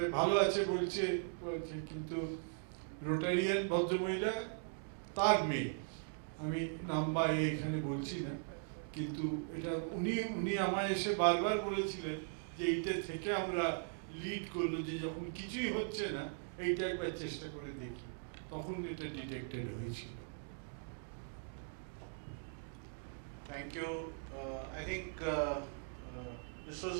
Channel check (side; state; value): left; silent; digital silence